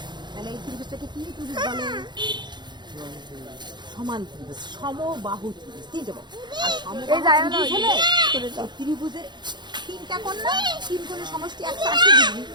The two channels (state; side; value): late; left; 0.21 ms